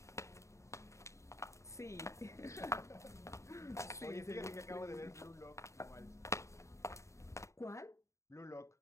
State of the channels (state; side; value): late; right; 0.14 ms